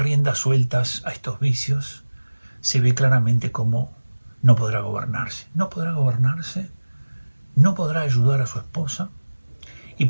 sueltas a estos vicios, se ve claramente cómo no podrá gobernarse. No podrá gobernarse, no podrá ayudar a su esposa y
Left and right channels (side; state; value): both; inverted; correlation -1.00